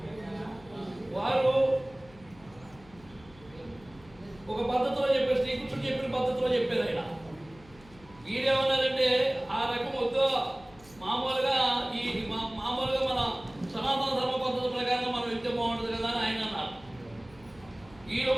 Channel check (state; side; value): noise; left; hum, 24 dB below the sound